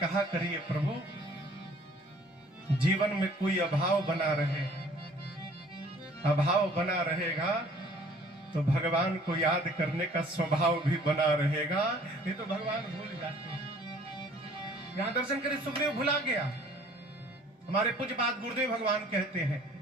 करिए प्रभु जीवन में कोई अभाव बना रहे, अभाव बना रहेगा तो भगवान को याद करने का स्वभाव भी बना रहेगा, नहीं तो भगवान भूल जाते हैं। यहां दर्शन करे सुग्रीव भुला गया। हमारे पूज्यपाद गुरुदेव भगवान कहते हैं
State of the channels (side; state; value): both; normal; correlation 0.54